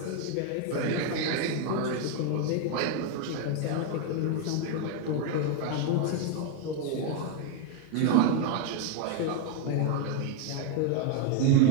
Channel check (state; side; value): different; both; correlation 0.01